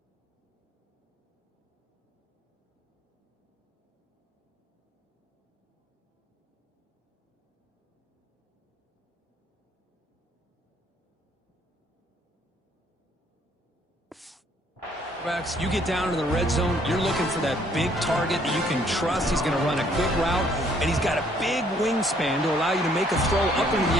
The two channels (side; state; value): both; normal; correlation 0.64